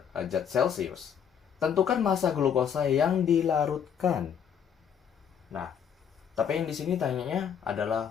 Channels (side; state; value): right; quieter; 8.0 dB